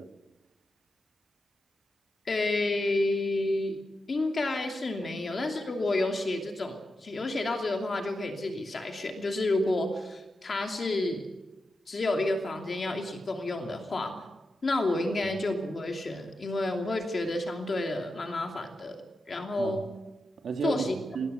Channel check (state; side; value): normal; both; correlation 0.88